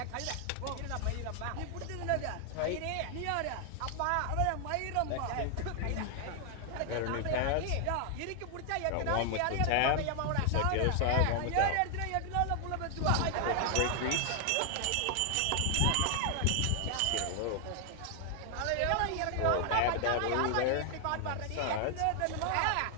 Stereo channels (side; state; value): both; different; correlation 0.00